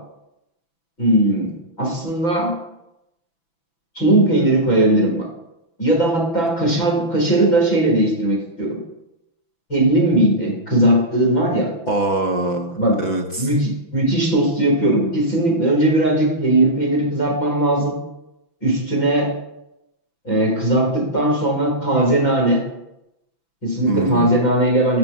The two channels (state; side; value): late; right; 6.0 ms